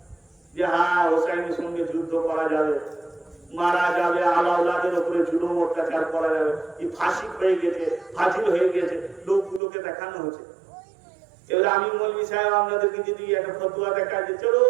যে হ্যাঁ হোসাইনের সঙ্গে যুদ্ধ করা যাবে, মারা যাবে, আলাউলাদের উপরে জুলুম অত্যাচার করা যাবে। এই ফাঁসি হয়ে গেছে, ফাজিল হয়ে গেছে, লোকগুলোকে দেখানো হচ্ছে। এবার আমি মৌলবী সাহেব আপনাদেরকে যদি একটা ফতুয়া দেখা যে চলো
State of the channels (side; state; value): left; drops out; at 9.6 s